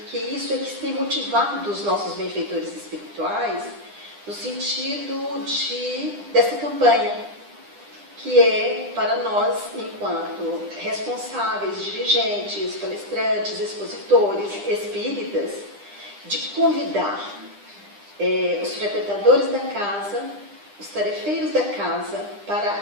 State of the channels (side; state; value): left; late; 9.9 ms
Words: isso é que tem motivado os nossos benfeitores espirituais no sentido dessa campanha, que é para nós, enquanto responsáveis, dirigentes, palestrantes, expositores, espíritas, de convidar os frequentadores da casa, os tarefeiros da casa, para